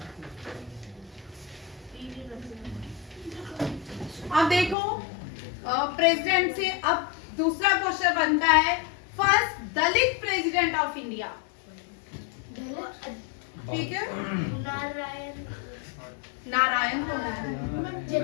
अब देखो प्रेसिडेंट से अब दूसरा क्वेश्चन बनता है, first Dalit president of India. ठीक है, नारायण कौन है?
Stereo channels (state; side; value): drops out; right; at 4.8 s